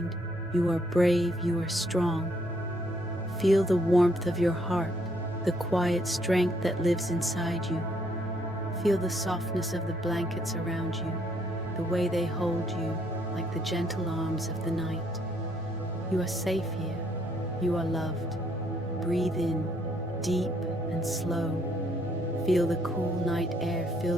you are brave, you are strong. Feel the warmth of your heart, the quiet strength that lives inside you. Feel the softness of the blankets around you, the way they hold you like the gentle arms of the night. You are safe here. You are loved. Breathe in, deep and slow. Feel the cool night air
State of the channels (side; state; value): left; noise; hum, 25 dB below the sound